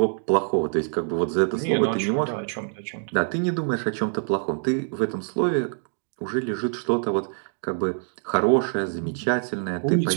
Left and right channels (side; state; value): left; silent; digital silence